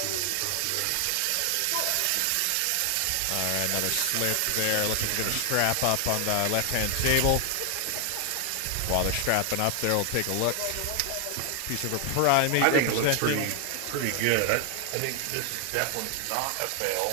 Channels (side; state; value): both; different; correlation 0.00